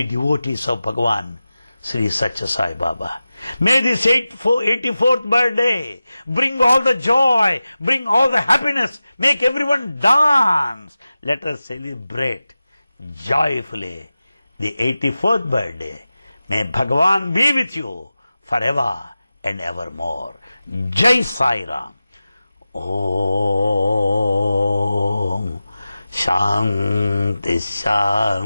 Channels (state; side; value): inverted; both; correlation -0.95